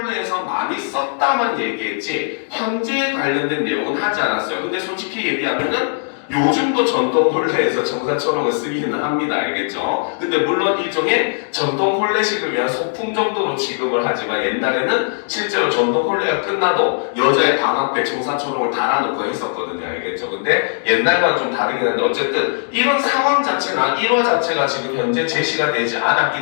많이 썼다만 얘기했지 현재에 관련된 내용은 하지 않았어요. 근데 솔직히 얘기하면은 요즘도 전통 혼례에서 청사초롱을 쓰기는 합니다. 알겠죠? 근데 물론 일종의 전통 혼례식을 위한 소품 정도로 지급을 하지만 옛날에는 실제로 전통 혼례가 끝나도 여자의 방 앞에 청사초롱을 달아놓고 했었거든요. 알겠죠? 근데 옛날과는 좀 다르긴 한데 어쨌든 이런 상황 자체나 일화 자체가 지금 현재 제시가 되지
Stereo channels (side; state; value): right; silent; digital silence